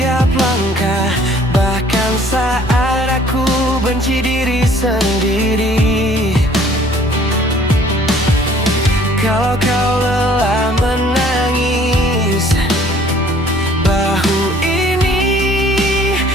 langkah, bahkan saat aku benci diri sendiri. Kalau kau lelah menangis, bahu ini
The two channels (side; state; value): both; normal; correlation 0.56